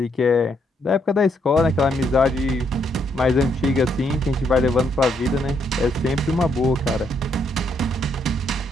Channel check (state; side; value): normal; both; correlation 0.74